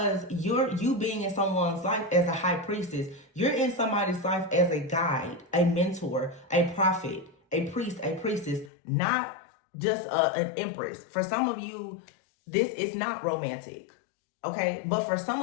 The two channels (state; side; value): drops out; right; at 8.7 s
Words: you being in someone's life as a high priestess, you're in somebody's life as a guide, a mentor, a prophet, a priest, a priestess, not just an empress. For some of you, this is not romantic, okay? But for